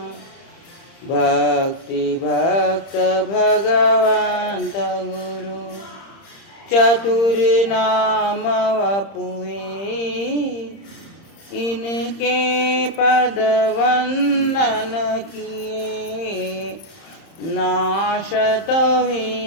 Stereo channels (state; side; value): late; right; 30 ms